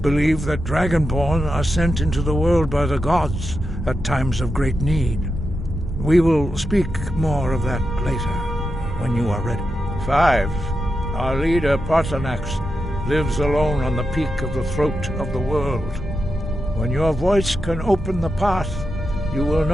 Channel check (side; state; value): both; normal; correlation 0.88